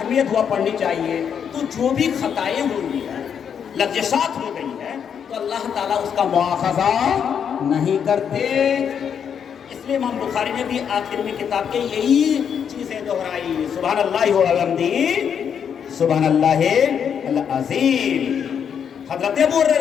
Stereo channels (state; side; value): quieter; right; 7.8 dB